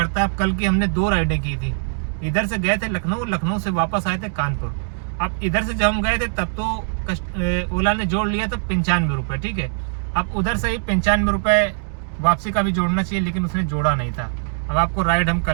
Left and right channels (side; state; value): left; silent; digital silence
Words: अब कल की हमने 2 राइडें की थी, इधर से गए थे लखनऊ, लखनऊ से वापस आए थे कानपुर। अब इधर से जब हम गए थे तब तो ओला ने जोड़ लिया था 95 रुपये, ठीक है। अब उधर से ही 95 रुपये वापसी का भी जोड़ना चाहिए, लेकिन उसने जोड़ा नहीं था। अब आपको राइड हम